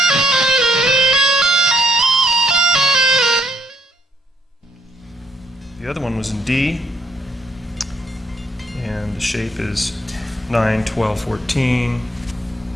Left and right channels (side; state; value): both; normal; correlation 0.69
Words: The other one was in D, and the shape is 9, 12, 14,